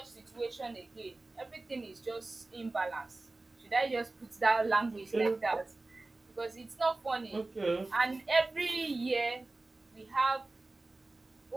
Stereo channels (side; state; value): left; quieter; 3.2 dB